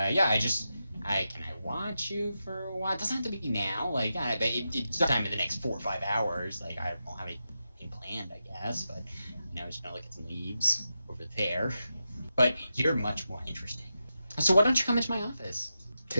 can I watch you for a while? It doesn't have to be now. Like, but it's sometime in the next 4 or 5 hours. Like, I don't have anything planned, I guess. But I'm just gonna look at some leaves over there. But you're much more interesting. So why don't you come into my office?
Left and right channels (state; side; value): inverted; both; correlation -0.88